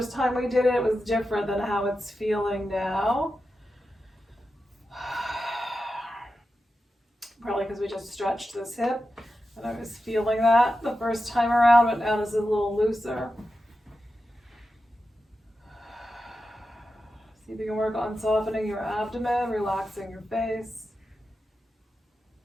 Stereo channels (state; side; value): normal; both; correlation 0.91